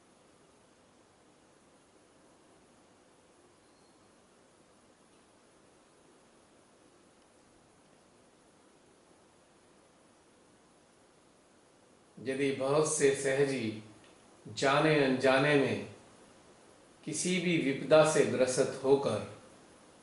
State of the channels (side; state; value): both; identical; correlation 1.00